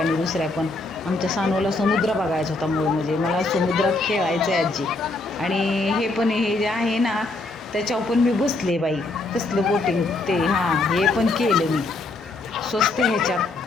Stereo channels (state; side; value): quieter; right; 3.1 dB